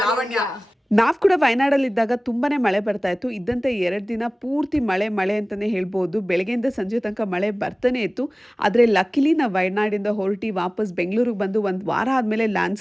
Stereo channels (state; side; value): normal; both; correlation 0.98